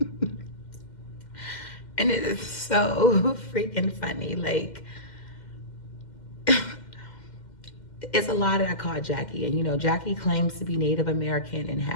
And it is so freaking funny. Like, it's a lie that I caught Jackie. And, Jackie claims to be Native American and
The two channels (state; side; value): late; right; 2.1 ms